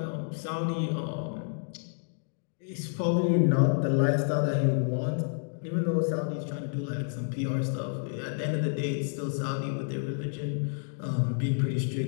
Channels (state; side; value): silent; right; digital silence